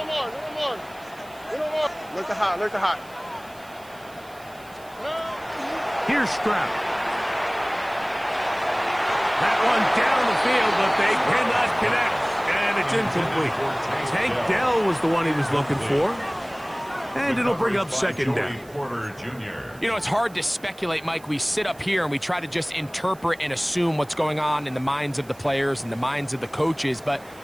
Look to hot. Here's Stroud. That one down the field, but they cannot connect. And it's incomplete. Tank Dell was the one he was looking for. And it'll bring up 2nd down. You know, it's hard to speculate, Mike. We sit up here and we try to just interpret and assume what's going on in the minds of the players and the minds of the coaches, but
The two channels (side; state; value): right; noise; hiss, 24 dB below the sound